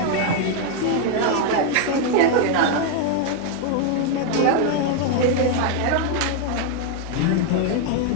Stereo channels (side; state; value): both; different; correlation 0.00